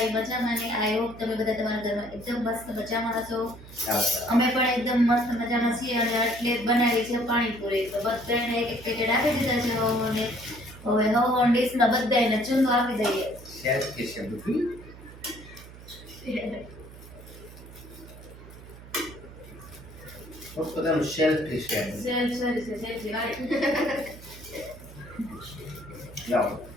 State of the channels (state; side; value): noise; right; hum, 17 dB below the sound